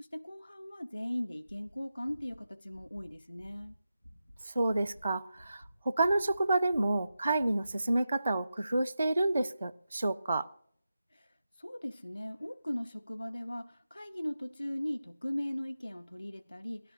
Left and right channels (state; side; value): inverted; both; correlation -0.90